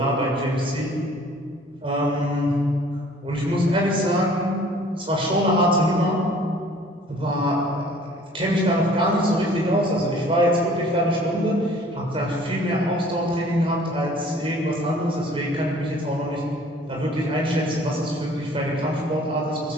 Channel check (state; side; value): normal; both; correlation 0.53